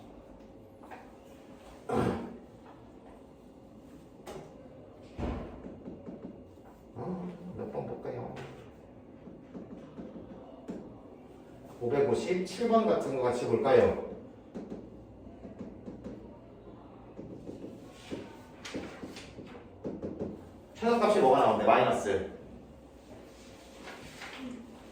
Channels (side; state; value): both; identical; correlation 1.00